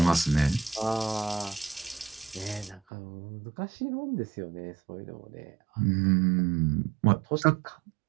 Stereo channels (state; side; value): drops out; left; at 2.8 s